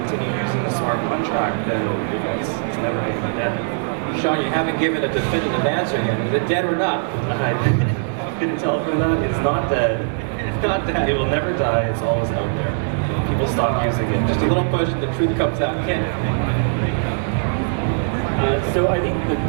continue using the smart contract, then it's never going to be dead. Sean, you haven't given a definitive answer yet. Is it dead or not? I didn't tell them that. It's not dead. It's not dead. It will never die. It's always out there. People stop using it. Just a little push and the truth comes out. Kyn. So I think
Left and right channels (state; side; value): silent; left; 57 dB below the other